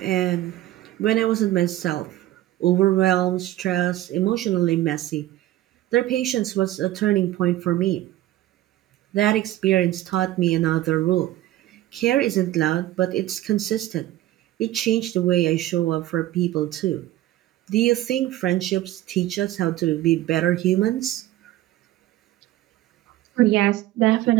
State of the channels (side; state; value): left; quieter; 14.9 dB